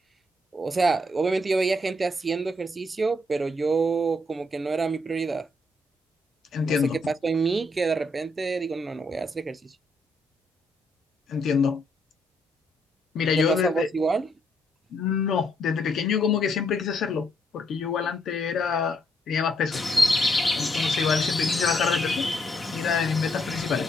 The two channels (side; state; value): both; normal; correlation 0.74